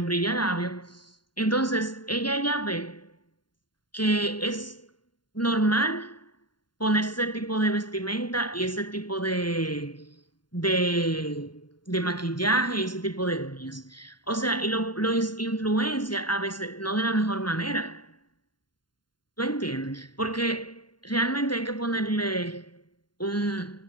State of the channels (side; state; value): right; late; 0.71 ms